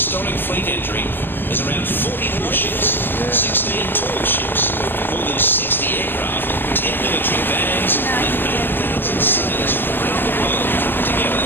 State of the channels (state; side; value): late; right; 0.099 ms